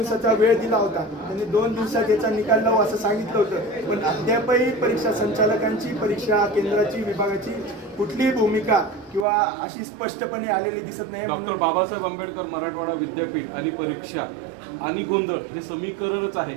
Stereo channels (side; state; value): left; drops out; at 9.2 s